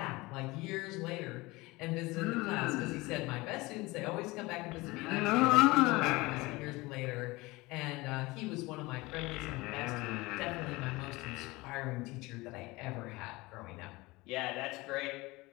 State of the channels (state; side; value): quieter; right; 22.0 dB